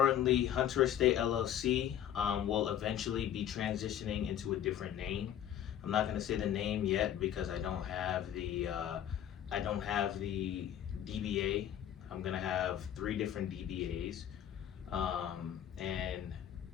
Hunter Estate LLC will eventually be transitioning into a different name. I'm not going to say the name yet because I don't have the DBA. I'm gonna have 3 different DBAs, and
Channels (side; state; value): right; quieter; 10.4 dB